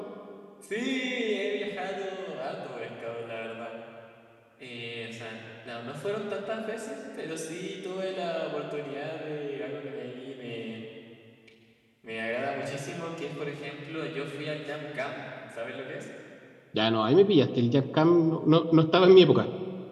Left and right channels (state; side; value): identical; both; correlation 1.00